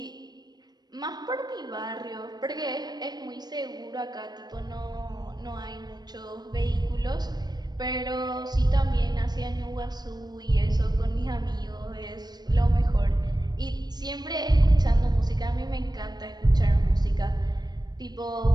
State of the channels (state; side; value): late; left; 0.20 ms